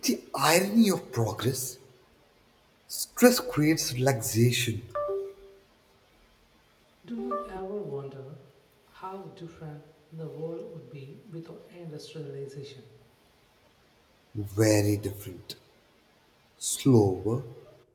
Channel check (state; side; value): identical; both; correlation 1.00